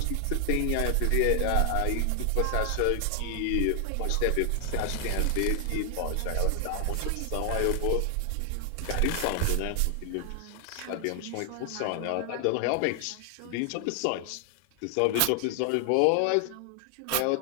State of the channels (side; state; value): both; different; correlation 0.00